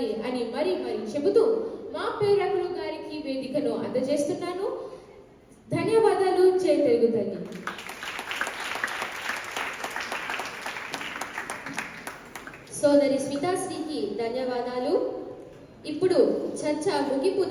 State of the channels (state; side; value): identical; both; correlation 1.00